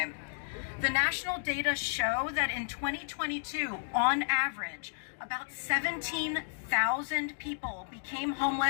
The national data show that in 2022, on average, about 17,000 people became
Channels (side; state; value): right; silent; digital silence